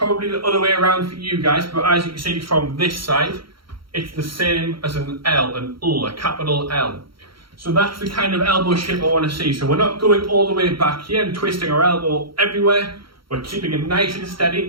the other way around for you guys, but as you can see from this side, it's the same as an L, a capital L. So that's the kind of elbow shape I want to see. So we're not going all the way back here and twisting our elbow everywhere. We're keeping it nice and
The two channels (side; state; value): left; late; 0.74 ms